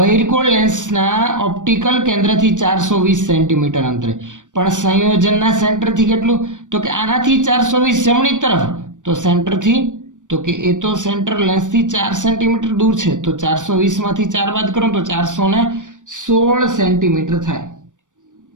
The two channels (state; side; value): late; left; 0.87 ms